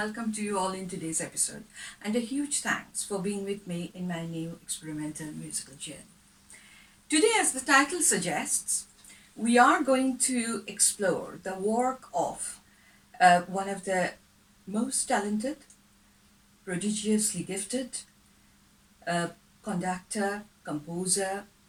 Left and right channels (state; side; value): identical; both; correlation 1.00